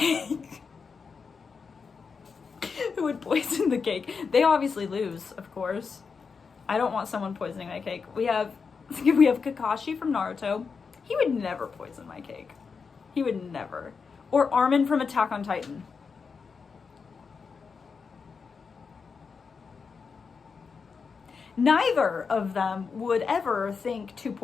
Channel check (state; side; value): quieter; right; 5.4 dB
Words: Who would poison the cake? They obviously lose, of course. I don't want someone poisoning my cake. We have We have Kakashi from Naruto. He would never poison my cake. He would never. Or Armin from Attack on Titan. Neither of them would ever think to